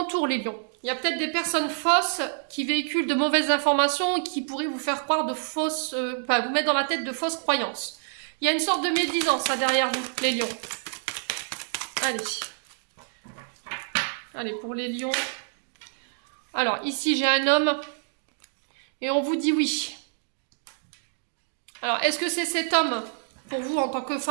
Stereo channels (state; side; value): silent; left; digital silence